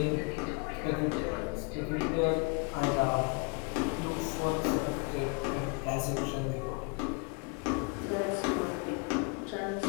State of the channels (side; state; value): right; quieter; 33.5 dB